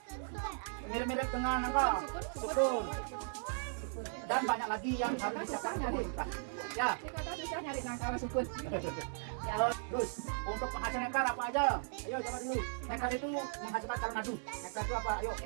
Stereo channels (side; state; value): left; silent; digital silence